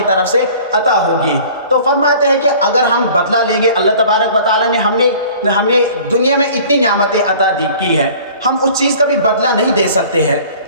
طرف سے عطا ہوگی۔ تو فرماتے ہیں کہ اگر ہم بدلہ لیں گے، اللہ تبارک و تعالیٰ نے ہمیں دنیا میں اتنی نعمتیں عطا کی ہیں، ہم اس چیز کا بھی بدلہ نہیں دے سکتے ہیں،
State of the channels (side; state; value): both; inverted; correlation -0.48